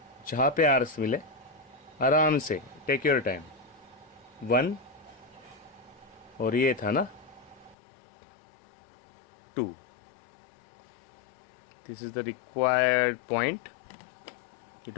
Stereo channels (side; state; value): right; drops out; at 7.8 s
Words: जहाँ पे आर्क्स मिले आराम से, टेक योर टाइम। 1 और ये था ना 2, this is the required point. You